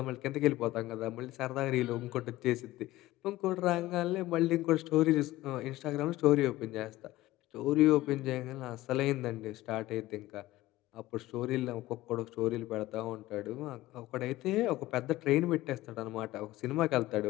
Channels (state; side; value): quieter; right; 17.0 dB